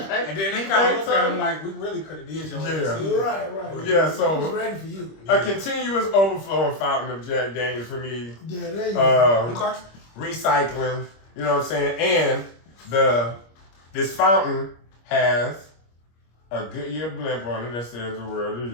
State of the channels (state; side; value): late; right; 25 ms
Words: then they kind of looked at him like, "We really could have did your ass." Yeah. Right. Yeah, He so was ready for you. a continuous overflowing fountain of Jack Daniels for me. Yeah, there you go. Okay. Recycling, you know what I'm saying? And this fountain has a Goodyear blimp on it that says "The world is